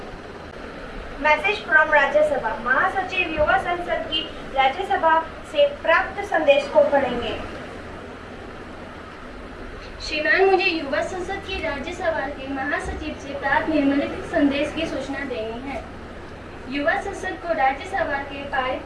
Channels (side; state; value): both; identical; correlation 1.00